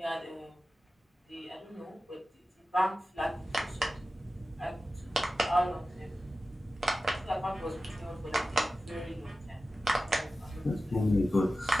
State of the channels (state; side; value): normal; both; correlation 0.95